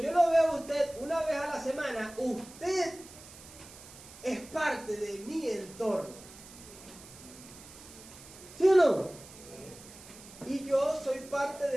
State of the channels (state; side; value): noise; right; hiss, 18 dB below the sound